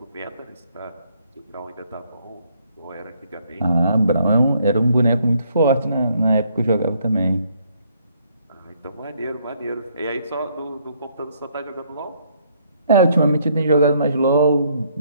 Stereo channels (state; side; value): inverted; both; correlation -0.68